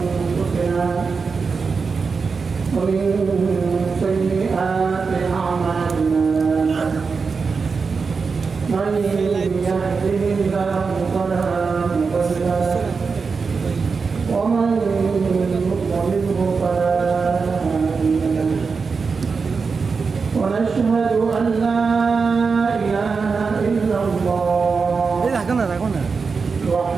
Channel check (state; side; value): quieter; left; 5.0 dB